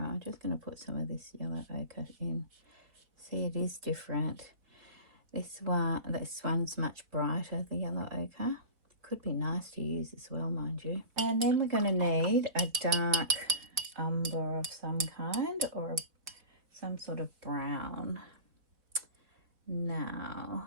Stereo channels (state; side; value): late; left; 3.8 ms